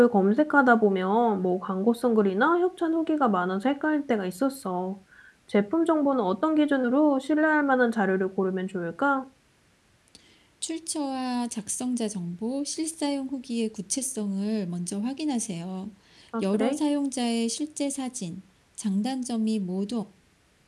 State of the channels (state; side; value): identical; both; correlation 1.00